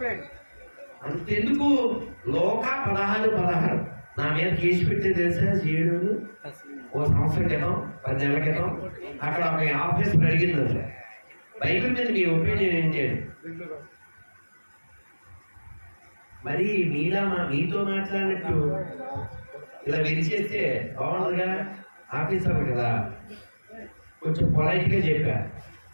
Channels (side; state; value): both; inverted; correlation -1.00